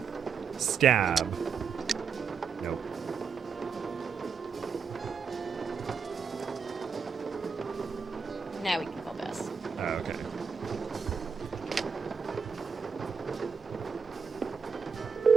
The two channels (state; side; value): quieter; left; 5.8 dB